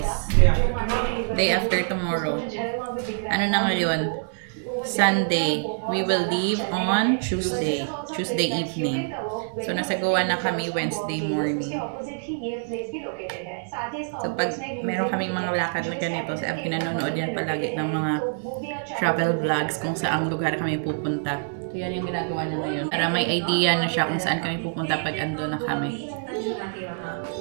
Day after tomorrow. Ano na ngayon? Sunday. We will leave on Tuesday evening. So, nasa Goa na kami Wednesday morning. So, pag meron kaming mga lakad na ganito, sa pinanonood yan palagi ng mga travel vlogs kung saang lugar kami pupunta. So, yan yung ginagawa na ngayon. Para may idea na siya kung saan kami pupunta pag ando na kami.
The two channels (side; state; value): left; silent; 61 dB below the other